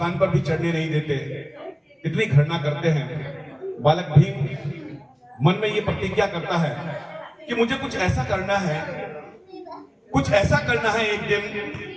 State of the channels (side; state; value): both; identical; correlation 1.00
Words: पर भी चढ़ने नहीं देते, इतनी घृणा करते हैं। बालक भीम मन में ये प्रतिज्ञा करता है कि मुझे कुछ ऐसा करना है, कुछ ऐसा करना है एक दिन